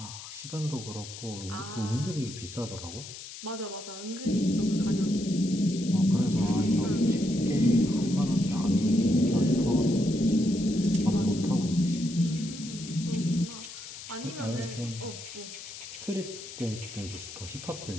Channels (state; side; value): noise; left; hiss, 12 dB below the sound